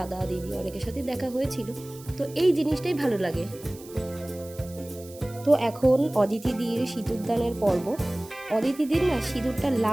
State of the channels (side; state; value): right; noise; hiss, 20 dB below the sound